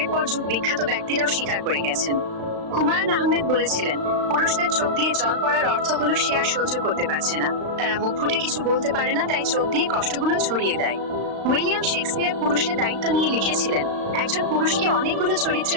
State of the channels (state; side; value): late; left; 35 ms